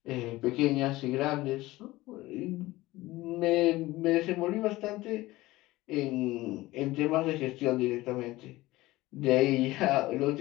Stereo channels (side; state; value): right; quieter; 18.5 dB